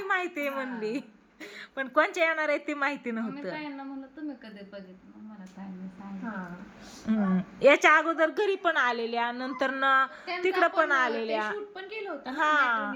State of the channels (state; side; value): identical; both; correlation 1.00